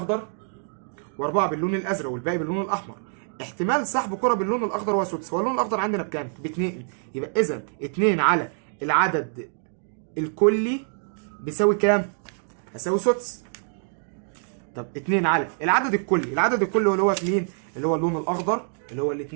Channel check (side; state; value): left; silent; 61 dB below the other